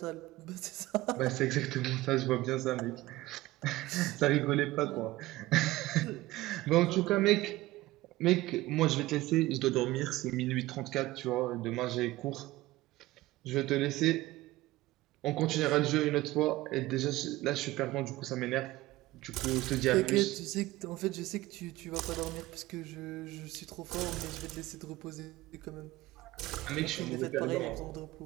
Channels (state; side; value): quieter; left; 18.0 dB